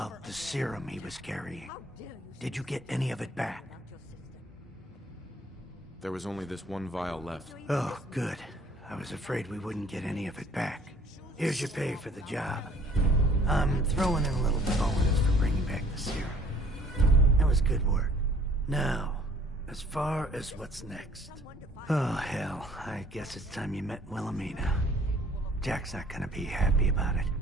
the serum he was carrying? How dare you Did you get any of it back? about your sister? There was only this one vial left. Oh, good. I was afraid we wouldn't get any of it back. Here's your pay for the job. I'm throwing in a little bonus for bringing back the serum. That was good work. Now, as far as what's next. Oh, hell. I guess it's time you met Wilhelmina. Jack's not gonna be happy about it.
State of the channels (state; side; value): normal; both; correlation 0.56